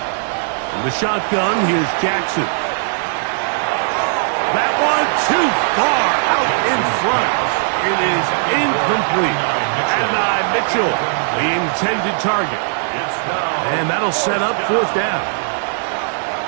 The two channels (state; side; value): silent; left; 60 dB below the other